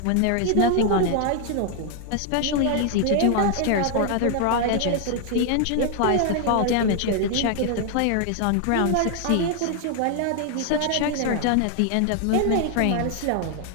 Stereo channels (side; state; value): both; different; correlation 0.00